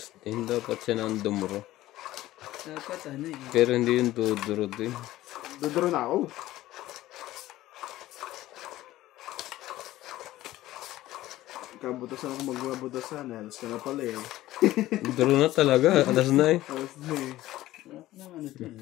din dapat siya ng dumuro. dapat eh. Pero hindi yung duduro din. Duduro na ako. Kabutasan ako magbabutasan. Alas ka na pala eh. Duro na talaga. Alas na eh. Alas na eh. Wala ka naman ito.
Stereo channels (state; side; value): quieter; right; 15.7 dB